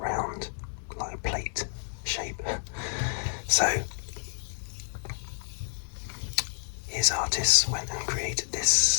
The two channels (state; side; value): silent; right; 58 dB below the other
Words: round, like a plate shape. So his artists went and created